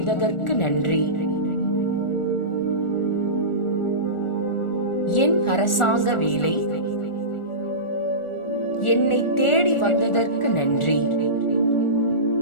நன்றி. என் அரசாங்க வேலை என்னை தேடி வந்ததற்கு நன்றி.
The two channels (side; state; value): right; late; 1.4 ms